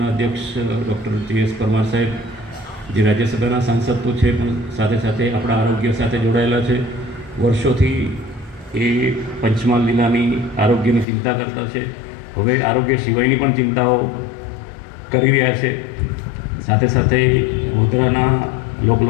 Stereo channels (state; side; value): drops out; right; at 11.1 s